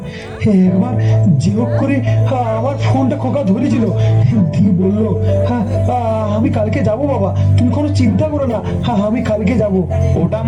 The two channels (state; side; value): identical; both; correlation 1.00